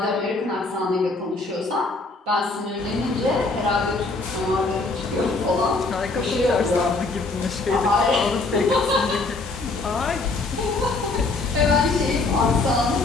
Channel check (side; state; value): right; quieter; 3.5 dB